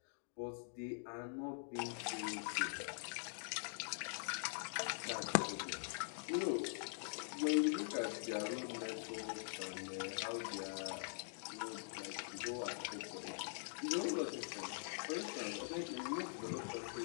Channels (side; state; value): right; silent; digital silence